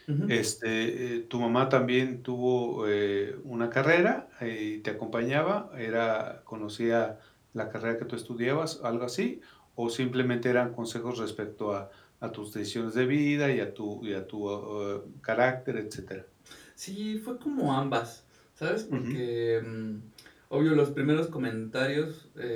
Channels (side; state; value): both; identical; correlation 1.00